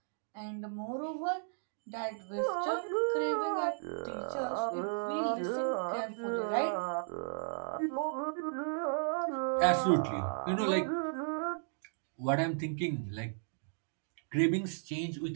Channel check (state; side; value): silent; left; digital silence